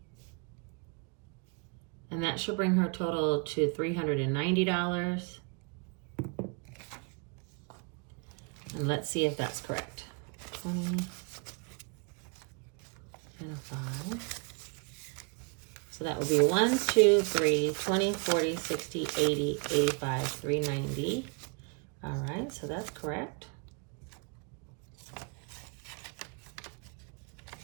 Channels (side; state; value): left; quieter; 33.2 dB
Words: And that should bring her total to $390. And let's see if that's correct. 20 and a 5. So that would be 1, 2, 3, 20, 40, 60, 80, 85, 390. All right, so that's correct.